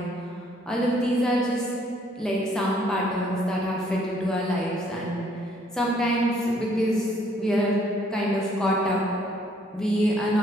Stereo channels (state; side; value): normal; both; correlation 0.64